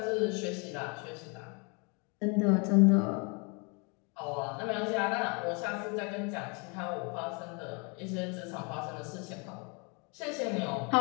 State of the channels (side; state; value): right; quieter; 32.8 dB